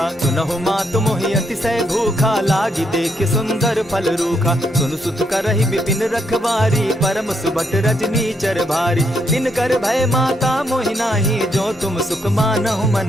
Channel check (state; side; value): normal; both; correlation 0.76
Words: सुनहु मातु मोहि अतिशय भूखा लागी देख सुंदर फल रूखा। सुनु सुत करहि विपिन रखवारी परम सुबट रजनी चर भारी। दिन कर भय माता मोहि नाही जो तुम सुख मानहु